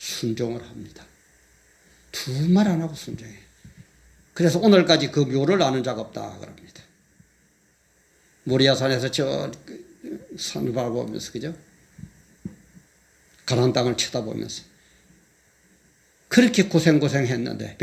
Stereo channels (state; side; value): identical; both; correlation 1.00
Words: 합니다. 두 말 안 하고 순종해. 그래서 오늘까지 그 묘를 아는 자가 없다 그럽니다. 모리아산에서 저 산을 바라보면서 그죠? 가나안 땅을 쳐다보면서 그렇게 고생했는데